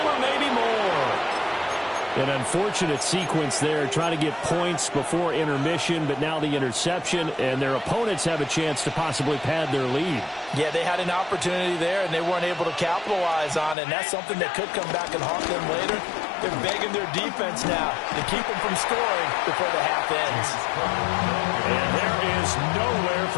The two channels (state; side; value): drops out; right; at 13.8 s